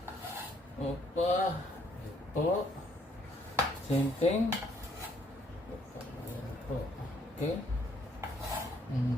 Opa. Ito. Same thing. Yan po. Okay.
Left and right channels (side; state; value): both; normal; correlation 0.67